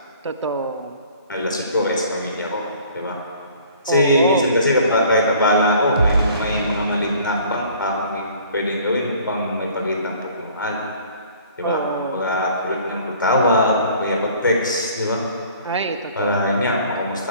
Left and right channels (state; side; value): inverted; both; correlation -0.52